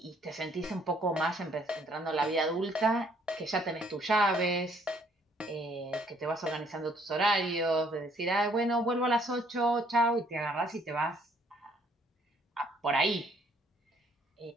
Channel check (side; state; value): both; normal; correlation 0.64